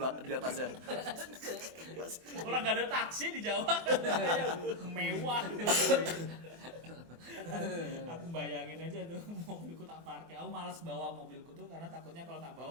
di atasnya. Orang gak ada taksi di Jawa. Mewah. Aku bayangin aja tuh mobilku tak parkir. Aku malas bawa mobilku tuh karena takutnya kalau tak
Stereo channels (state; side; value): late; left; 24 ms